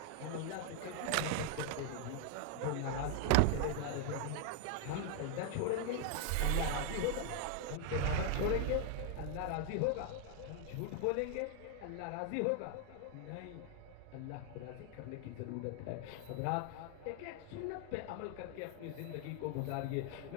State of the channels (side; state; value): both; different; correlation 0.00